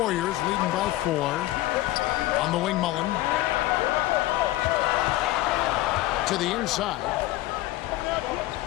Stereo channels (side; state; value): right; quieter; 16.4 dB